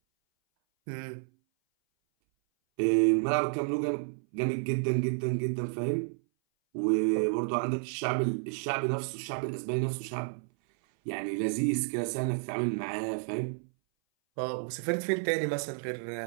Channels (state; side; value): silent; left; 57 dB below the other